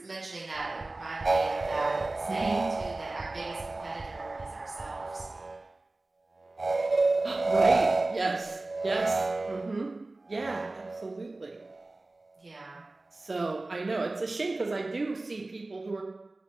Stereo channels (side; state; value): left; quieter; 3.0 dB